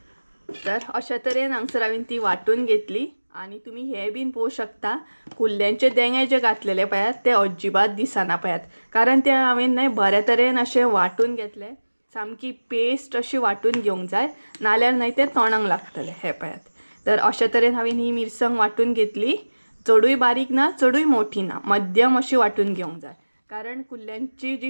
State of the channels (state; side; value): inverted; both; correlation -1.00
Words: तर अशा तरेन हांगसर हांवें ती वांटून घेतली आनी तुमी हे बीन पळोवंक शकता कुल्ल्यांचे देंगे जे घातलेले पळयात ते अजिबात दिसना पळयात. कारण ते हांवें न्हय बऱ्या तरेन अशें वांटून घेतलें. सामकी पेस्ट अशी वांटून घेवंक जाय नाल्यार न्हय ते तोंडाक लागतले. हे पळयात. तर अशा तरेन हांवें ही मिरसांग वांटून घेतली. चडूय बारीक ना चडूय मोठी ना, मध्यम अशी वांटून घेवंक जाय. कारण कुल्ल्यांची